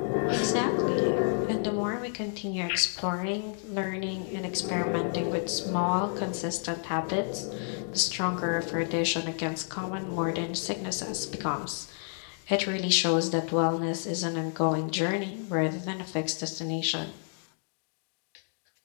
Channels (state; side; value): silent; right; 58 dB below the other